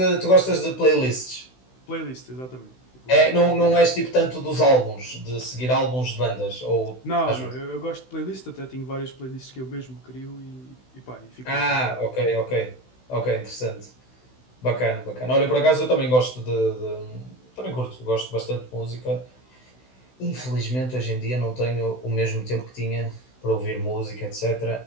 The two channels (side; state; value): right; late; 16 ms